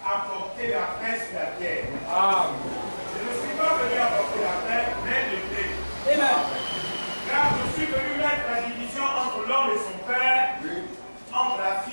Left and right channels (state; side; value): inverted; both; correlation -1.00